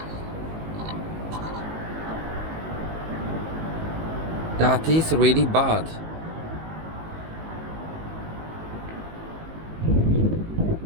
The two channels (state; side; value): late; left; 19 ms